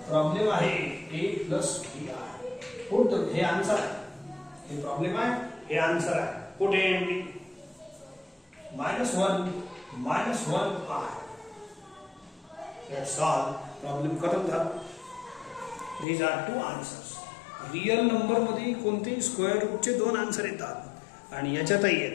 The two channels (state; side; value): drops out; right; at 16.1 s